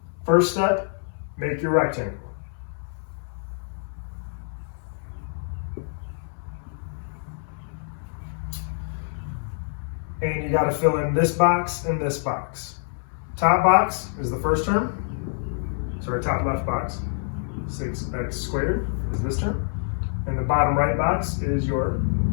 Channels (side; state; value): right; silent; 61 dB below the other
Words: First step, make your rectangle. And you got to fill in this box and this box. Top box is the first term. Sorry, top left box. 6x squared is this term. And the bottom right box is your